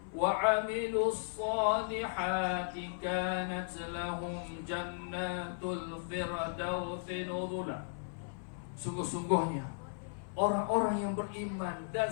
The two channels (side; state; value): right; silent; 54 dB below the other